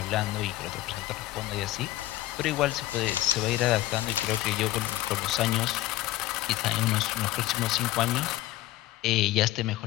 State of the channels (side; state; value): right; quieter; 16.4 dB